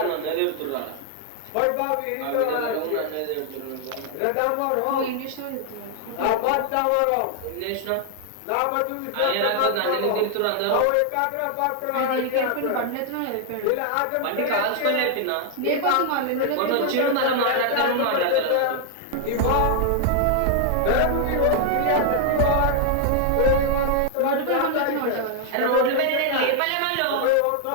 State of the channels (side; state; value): both; different; correlation 0.00